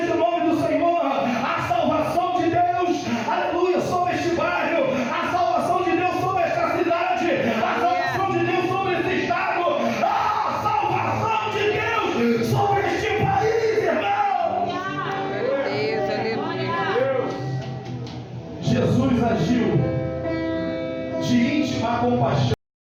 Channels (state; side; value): identical; both; correlation 1.00